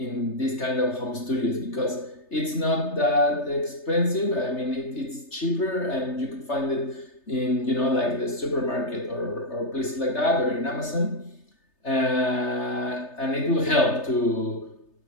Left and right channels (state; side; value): late; right; 3.3 ms